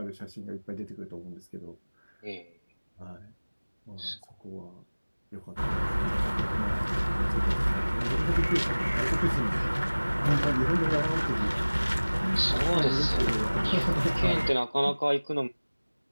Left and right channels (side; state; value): both; inverted; correlation -1.00